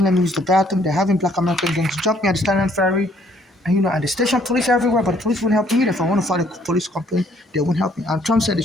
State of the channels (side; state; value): both; normal; correlation 0.64